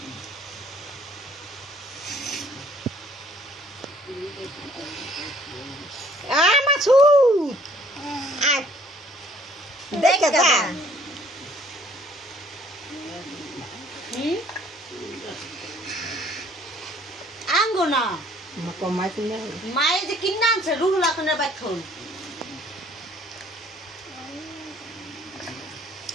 আঙ্গনা মায়ে যে কিনে আনছে রুহুল আখনের বাথন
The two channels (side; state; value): both; normal; correlation 0.59